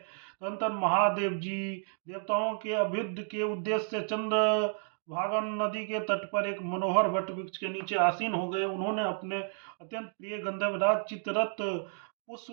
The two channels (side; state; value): left; silent; 57 dB below the other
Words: महादेव जी देवताओं के अभ्युदय के उद्देश्य से चंद्र भागन नदी के तट पर एक मनोहर वट वृक्ष के नीचे आसीन हो गए। उन्होंने अपने अत्यंत प्रिय गंधर्वराज चित्ररथ